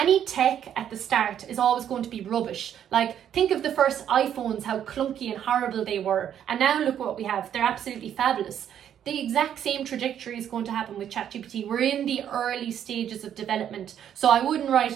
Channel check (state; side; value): quieter; left; 9.7 dB